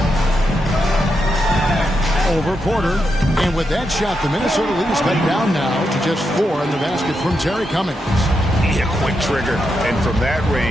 Over Porter. And with that shot, the Minnesota lead is cut down now to just 4 in the basket from Terry Cummings. Yeah, quick trigger. And from that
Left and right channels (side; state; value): both; normal; correlation 0.84